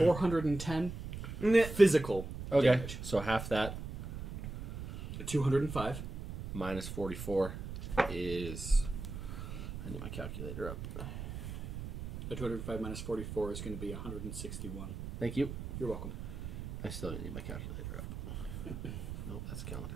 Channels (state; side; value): noise; right; rumble, 8 dB below the sound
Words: physical Okay, damage. so half that 205. minus 44 is... I need my calculator up. The 205 minus 44 is going to be 161. Thank you. You're welcome. I still need my calculator up. Nope, that's calendar.